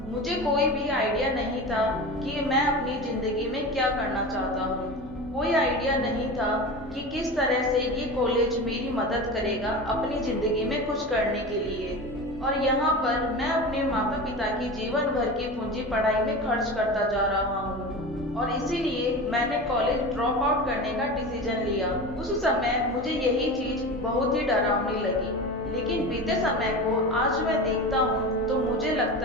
मुझे कोई भी आइडिया नहीं था कि मैं अपनी जिंदगी में क्या करना चाहता हूँ। कोई आइडिया नहीं था कि किस तरह से ये कॉलेज मेरी मदद करेगा अपनी जिंदगी में कुछ करने के लिए। और यहाँ पर मैं अपने माता पिता की जीवन भर की पूंजी पढ़ाई में खर्च करता जा रहा हूँ, और इसीलिए मैंने कॉलेज ड्रॉप आउट करने का डिसीजन लिया। उस समय मुझे यही चीज बहुत ही डरावनी लगी, लेकिन बीते समय को आज मैं देखता हूँ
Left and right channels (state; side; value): normal; both; correlation 0.29